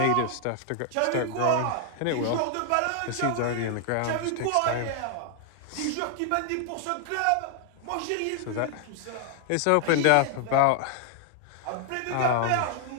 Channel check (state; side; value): different; both; correlation 0.00